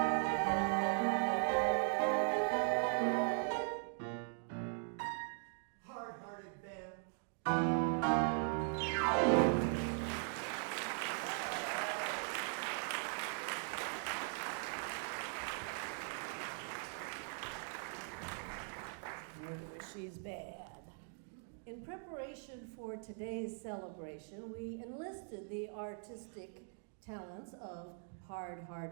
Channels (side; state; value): left; silent; 51 dB below the other